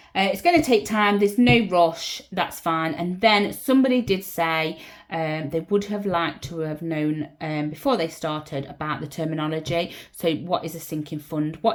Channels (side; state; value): both; identical; correlation 1.00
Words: It's going to take time. There's no rush. That's fine. And then somebody did say they would have liked to have known before they started about the terminology. So what is a sinking fund?